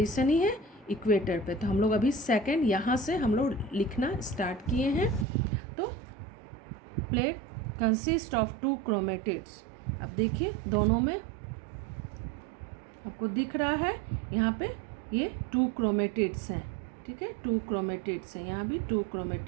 ही है इक्वेटर पे। तो हम लोग अभी सेकंड यहाँ से हम लोग लिखना स्टार्ट किए हैं। तो प्लेट कंसिस्ट ऑफ 2 क्रोमेटिड्स। अब देखिए दोनों में आपको दिख रहा है यहाँ पे ये 2 क्रोमेटिड्स हैं, ठीक है, 2 क्रोमेटिड्स हैं, यहाँ भी 2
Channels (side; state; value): left; drops out; at 5.2 s